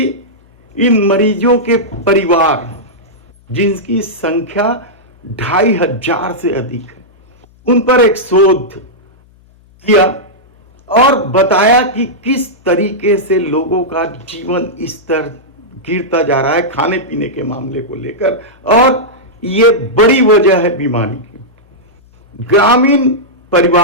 इन मरीजों के परिवार, जिनकी संख्या 2500 से अधिक है, उन पर एक शोध किया और बताया कि किस तरीके से लोगों का जीवन स्तर गिरता जा रहा है खाने पीने के मामले को लेकर, और ये बड़ी वजह है बीमारी की। ग्रामीण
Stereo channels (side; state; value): left; noise; hum, 30 dB below the sound